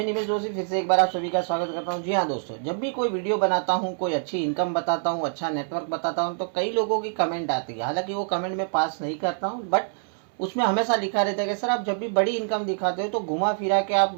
निमेश जोशी फिर से एक बार आप सभी का स्वागत करता हूं। जी हाँ दोस्तों, जब भी कोई वीडियो बनाता हूं, कोई अच्छी इनकम बताता हूं, अच्छा नेटवर्क बताता हूं, तो कई लोगों की कमेंट आती है। हालांकि वो कमेंट मैं पास नहीं करता हूं, बट उसमें हमेशा लिखा रहता है कि सर आप जब भी बड़ी इनकम दिखाते हो तो घुमा फिरा के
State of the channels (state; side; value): silent; left; 61 dB below the other